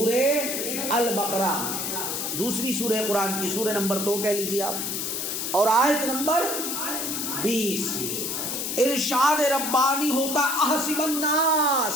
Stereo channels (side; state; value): left; noise; hiss, 2 dB below the sound